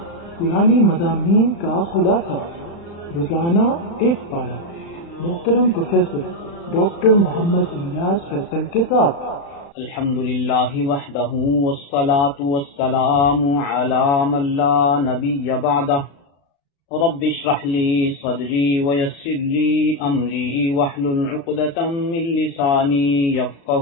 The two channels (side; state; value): right; late; 36 ms